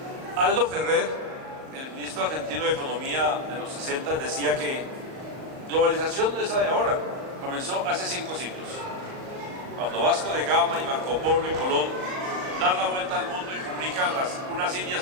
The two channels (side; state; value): left; late; 38 ms